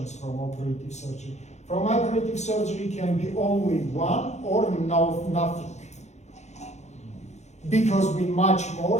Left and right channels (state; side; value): late; right; 0.33 ms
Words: from operative surgery. From operative surgery can be only 1 or nothing. Because we much more